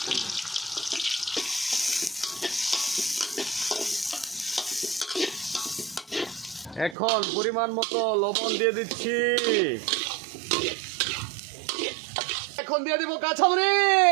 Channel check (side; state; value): left; drops out; at 7.0 s